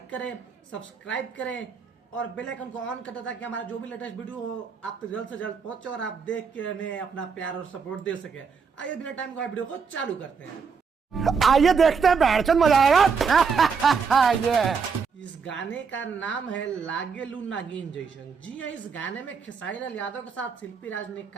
करें, सब्सक्राइब करें और बेल आइकन को ऑन कर दें ताकि हमारा जो भी लेटेस्ट वीडियो हो आप तक जल्द से जल्द पहुंचे और आप देख के हमें अपना प्यार और सपोर्ट दे सके। आइए बिना टाइम का वीडियो को चालू करते हैं। आइए देखते हैं, बैठचंद मजा आएगा। ये इस गाने का नाम है लागेलू नागिन जैसन। जी हाँ, इस गाने में खेसारी लाल यादव के साथ शिल्पी राज ने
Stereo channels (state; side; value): quieter; left; 5.7 dB